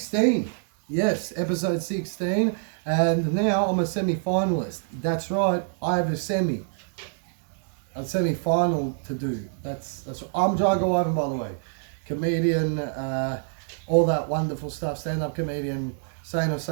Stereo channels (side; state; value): left; silent; 61 dB below the other